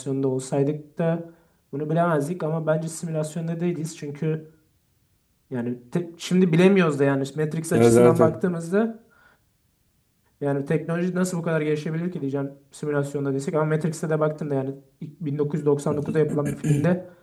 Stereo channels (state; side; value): identical; both; correlation 1.00